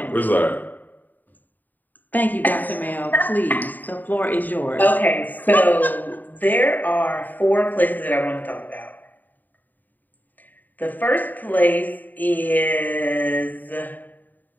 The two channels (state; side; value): late; right; 0.086 ms